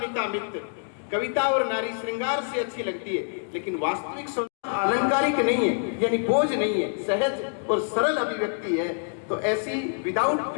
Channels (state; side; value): silent; right; 61 dB below the other